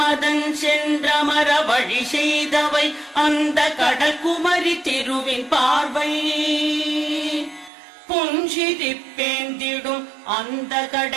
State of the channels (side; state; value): left; drops out; at 7.7 s